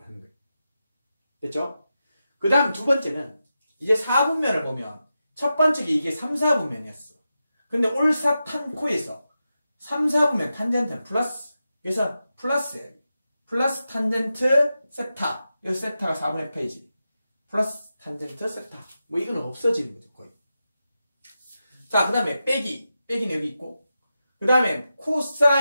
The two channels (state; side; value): inverted; both; correlation -0.90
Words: 하는 거예요. 됐죠? 그 다음 두 번째는 이제 4분면을 보면 첫 번째 게 이게 3, 4분면이었어. 근데 올사탄코에서 3, 4분면 탄젠트는 플러스. 그래서 플러스예요. 플러스 탄젠트 세타. 여기 세타가 4분의 페이지. 플러스 탄젠트 세타. 뭐 이거는 없어지는 거죠, 거의. 자, 그 다음에 빼기는 여기 있고. 그 다음에